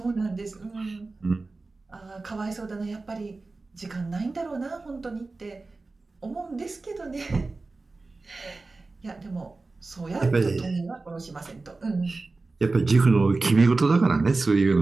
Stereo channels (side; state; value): left; quieter; 3.6 dB